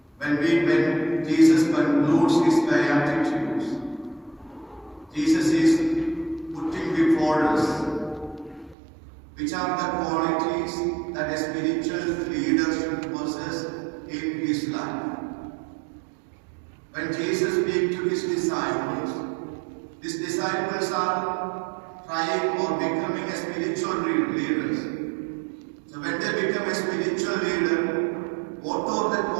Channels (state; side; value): drops out; left; at 8.8 s